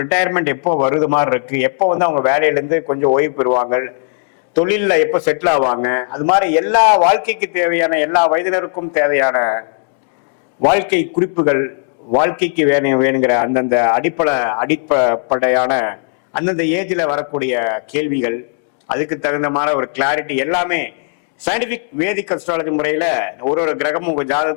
ரிட்டையர்மெண்ட் எப்போ வருது மாதிரி இருக்கு, எப்போ வந்து அவங்க வேலையிலேருந்து கொஞ்சம் ஓய்வு பெறுவாங்க, தொழிலில் எப்போ செட்டில் ஆவாங்க, அது மாதிரி எல்லா வாழ்க்கைக்கு தேவையான எல்லா வயதினருக்கும் தேவையான வாழ்க்கை குறிப்புகள், வாழ்க்கைக்கு வேணுங்கிற அந்தந்த அடிப்படையான அந்தந்த ஏஜில் வரக்கூடிய கேள்விகள், அதுக்கு தகுந்த மாதிரி ஒரு கிளாரிட்டி எல்லாமே சயின்டிபிக் வேதிக் அஸ்ட்ராலஜி முறையில ஒரு ஒரு கிரகமும் உங்க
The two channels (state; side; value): silent; right; digital silence